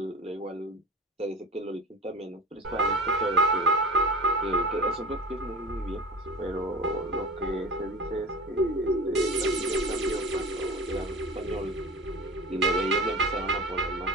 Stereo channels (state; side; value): normal; both; correlation 0.34